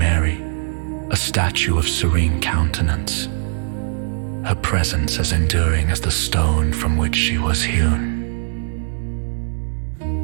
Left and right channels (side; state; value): left; silent; 59 dB below the other